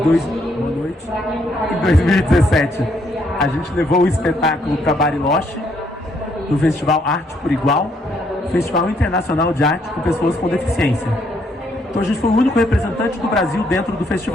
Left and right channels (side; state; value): both; normal; correlation 0.71